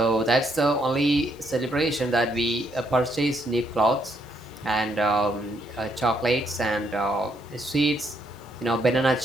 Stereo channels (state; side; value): normal; both; correlation 0.73